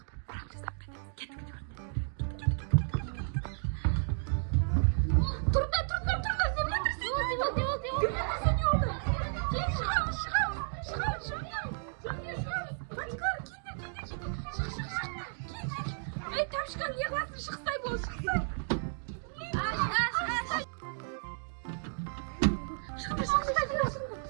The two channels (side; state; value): left; silent; digital silence